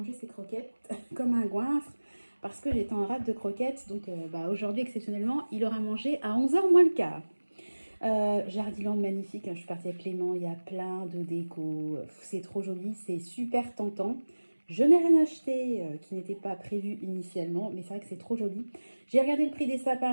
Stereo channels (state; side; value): inverted; both; correlation -1.00